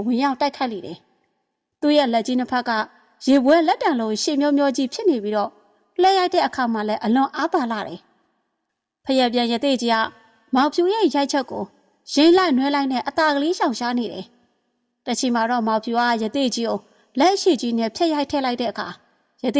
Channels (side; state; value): both; identical; correlation 1.00